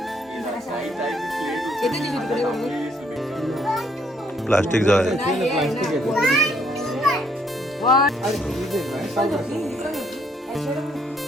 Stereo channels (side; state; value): both; normal; correlation 0.68